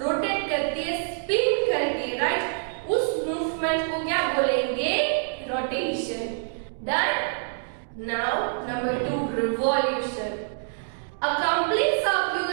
rotate करती है, स्पिन करती है, राइट? उस मूवमेंट को क्या बोलेंगे? Rotation. Done. Now number 2, revolution. A complete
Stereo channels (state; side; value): silent; left; digital silence